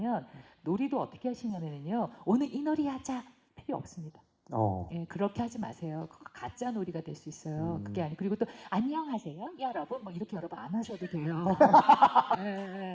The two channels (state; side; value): identical; both; correlation 1.00